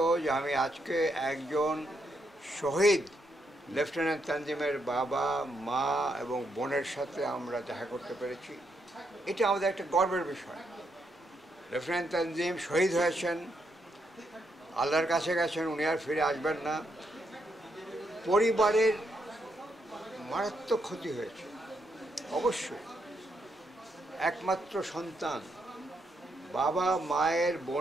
যে আমি আজকে একজন শহীদ লেফটেন্যান্ট তানজিমের বাবা, মা এবং বোনের সাথে আমরা দেখা করতে পেরেছি। এটা আমাদের একটা গর্বের বিষয়। লেফটেন্যান্ট তানজিম শহীদ হয়েছেন, আল্লাহর কাছে গেছেন, উনি আর ফিরে আসবেন না। পরিবারের মারাত্মক ক্ষতি হয়েছে অবশ্যই। একমাত্র সন্তান, বাবা, মায়ের,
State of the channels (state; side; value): normal; both; correlation 0.78